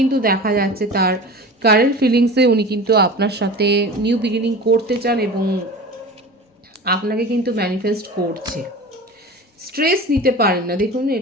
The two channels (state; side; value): normal; both; correlation 0.35